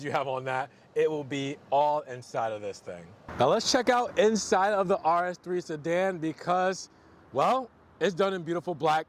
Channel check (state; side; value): identical; both; correlation 1.00